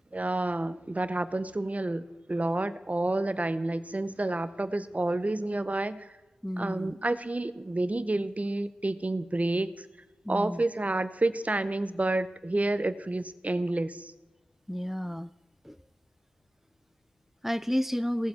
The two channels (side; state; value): both; normal; correlation 0.96